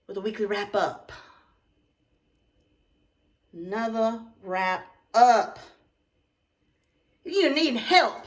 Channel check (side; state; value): both; identical; correlation 1.00